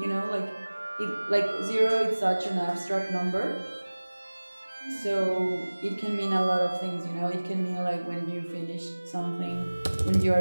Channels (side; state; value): both; inverted; correlation -1.00